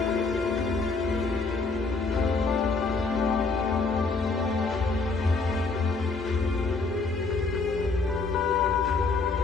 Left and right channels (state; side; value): quieter; right; 4.0 dB